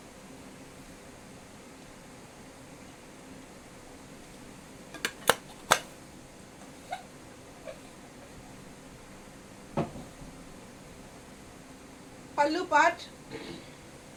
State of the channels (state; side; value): identical; both; correlation 1.00